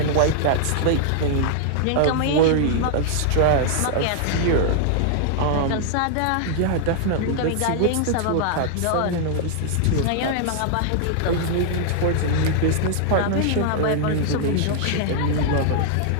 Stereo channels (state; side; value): different; both; correlation -0.01